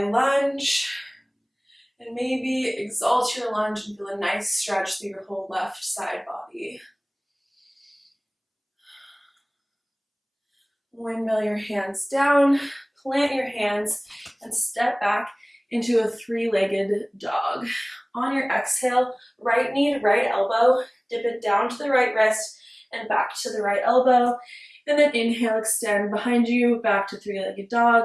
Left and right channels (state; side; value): identical; both; correlation 1.00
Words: And maybe exalt your lunge and feel a nice stretch through your whole left side body. Windmill your hands down, plant your hands, and step back into a three-legged dog. On your exhale, right knee to right elbow, dip it down to the right wrist and back to the right elbow. And then inhale, extend behind you, back to three-legged dog.